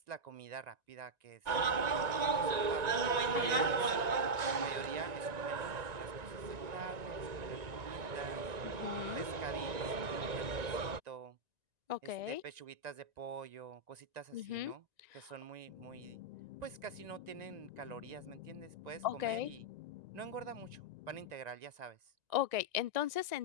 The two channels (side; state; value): left; late; 1.9 ms